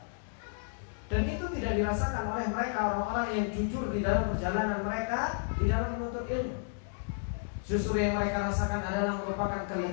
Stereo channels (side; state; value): right; silent; digital silence